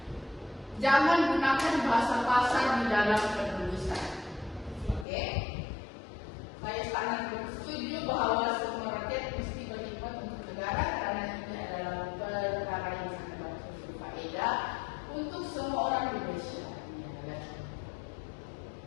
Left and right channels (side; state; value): right; drops out; at 5.1 s